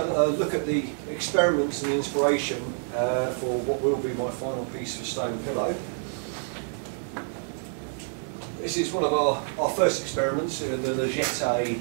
look at the experiments and the inspiration for what will be my final piece of stone pillow. This is one of our first experiments, the Legette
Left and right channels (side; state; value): left; silent; digital silence